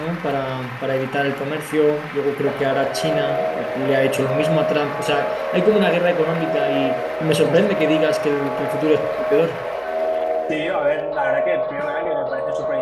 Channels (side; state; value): both; identical; correlation 1.00